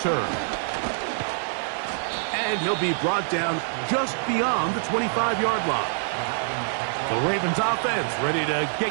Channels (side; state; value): left; silent; digital silence